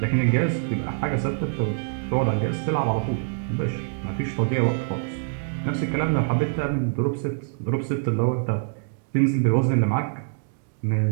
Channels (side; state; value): left; silent; digital silence